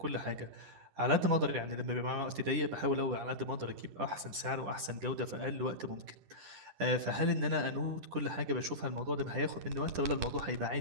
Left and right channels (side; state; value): left; late; 10 ms